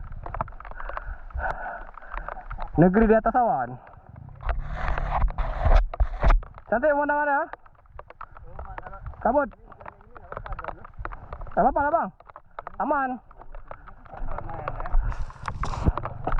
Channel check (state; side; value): identical; both; correlation 1.00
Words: Negeri di atas awan. Cantik mana-mana. Kabut. Gak apa-apa lah bang. Aman.